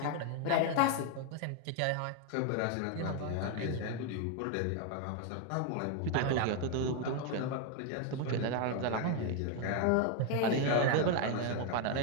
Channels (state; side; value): different; both; correlation 0.01